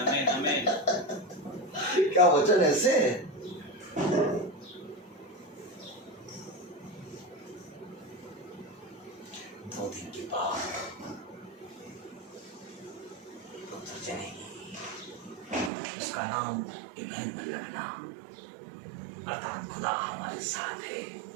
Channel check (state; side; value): drops out; left; at 15.7 s